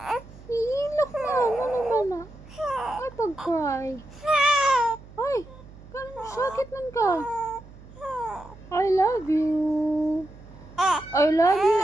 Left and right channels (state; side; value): noise; right; hum, 20 dB below the sound